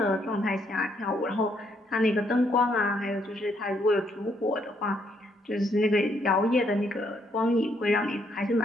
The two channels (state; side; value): normal; both; correlation 0.72